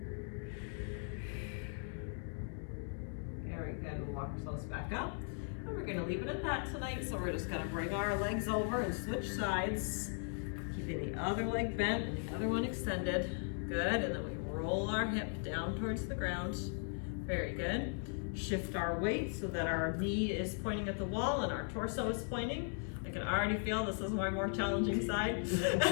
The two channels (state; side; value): silent; right; 52 dB below the other